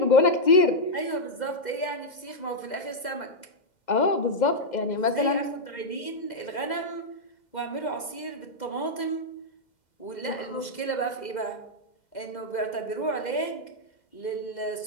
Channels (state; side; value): late; right; 2.1 ms